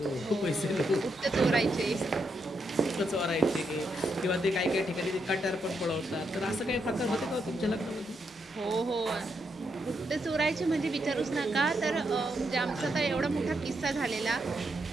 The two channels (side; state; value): both; normal; correlation 0.80